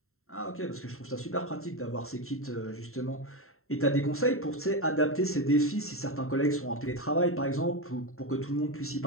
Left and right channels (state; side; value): late; right; 0.62 ms